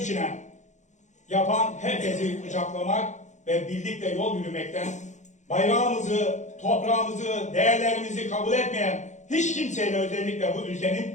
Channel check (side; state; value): right; late; 0.35 ms